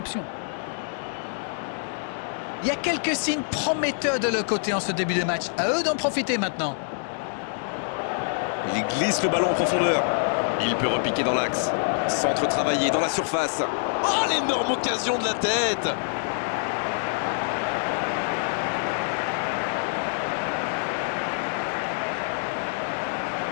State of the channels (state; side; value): silent; right; digital silence